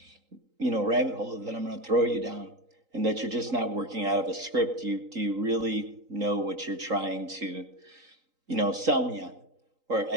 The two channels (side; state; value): left; late; 3.9 ms